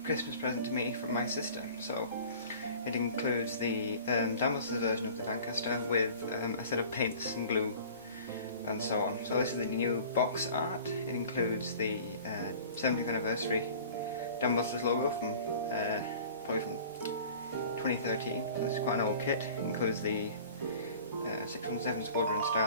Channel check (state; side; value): inverted; both; correlation -0.44